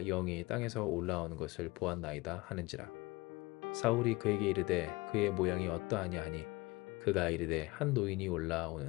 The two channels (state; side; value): quieter; right; 22.7 dB